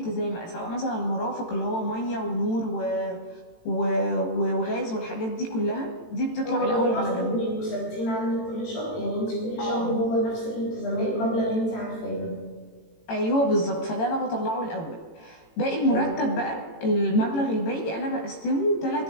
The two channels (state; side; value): late; right; 18 ms